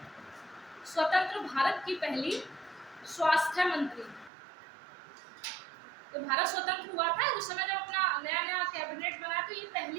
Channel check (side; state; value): left; drops out; at 4.3 s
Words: स्वतंत्र भारत की पहली स्वास्थ्य मंत्री। तो भारत स्वतंत्र हुआ था उस समय जब अपना नया नया कैबिनेट बना, तो ये